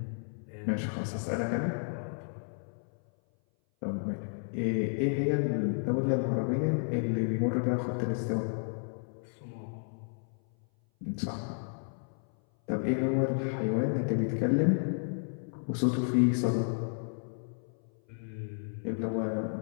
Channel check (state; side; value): silent; right; 56 dB below the other